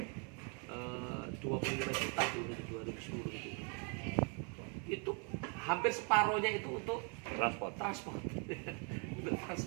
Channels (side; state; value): left; quieter; 36.5 dB